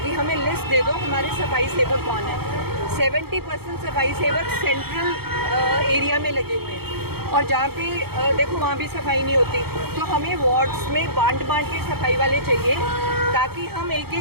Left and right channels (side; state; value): left; late; 0.96 ms